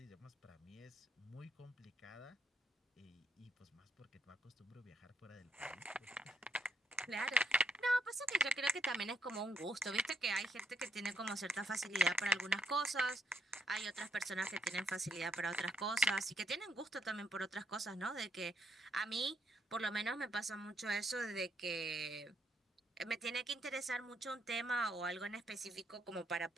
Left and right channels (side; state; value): both; normal; correlation 0.74